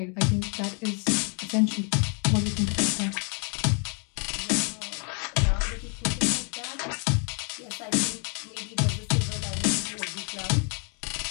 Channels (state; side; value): quieter; right; 38.9 dB